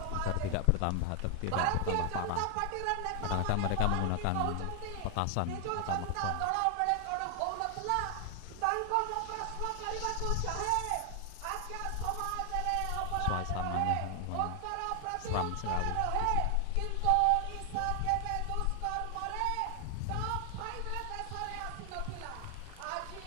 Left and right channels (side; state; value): both; different; correlation 0.00